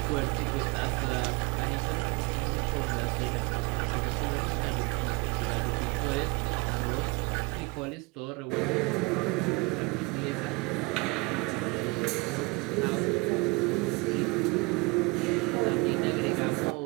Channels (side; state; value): left; quieter; 26.7 dB